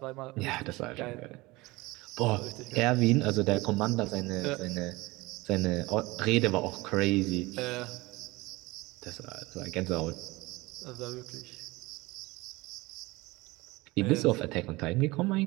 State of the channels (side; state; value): left; quieter; 21.9 dB